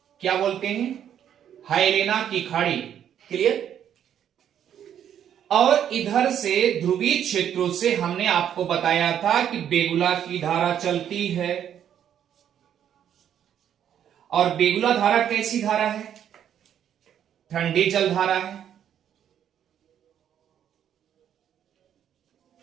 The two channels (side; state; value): left; quieter; 9.6 dB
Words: क्या बोलते हैं? हेलेना की खाड़ी। क्लियर? और इधर से ध्रुवीय क्षेत्रों से हमने आपको बताया था कि बेगुला की धारा चलती है। और बेगुला धारा कैसी धारा है? ठंडी जल धारा है।